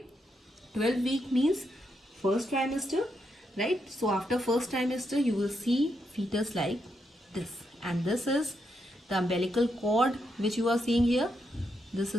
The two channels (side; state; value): both; normal; correlation 0.81